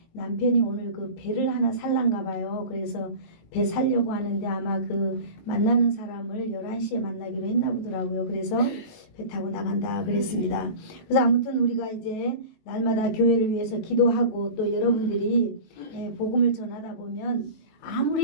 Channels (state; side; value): late; right; 19 ms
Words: 남편이 오늘 그 배를 하나 살란가 봐요. 그래서 배 살려고 하는데 아마 그 만나는 사람을 11시에 만나기로 했나 보더라고요. 그래서 배 타고 나간다 그랬습니다. 그래서 아무튼 우리가 이제 날마다 교회를 위해서 기도하고 또 여러분들이 복음을 전하다 보면